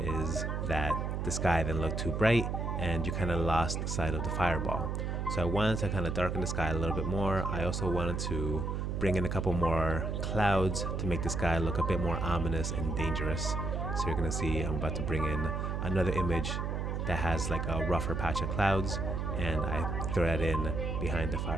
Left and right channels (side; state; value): right; noise; hum, 1 dB below the sound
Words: that the sky then looked too bright and you kind of lost sight of the fireball. So I wanted to kind of darken the sky a little bit more. I also wanted to bring in a couple more clouds to make the sky look a bit more ominous and dangerous. So you're gonna see I'm about to bring in another image that has like a rougher patch of clouds, and I throw that in behind the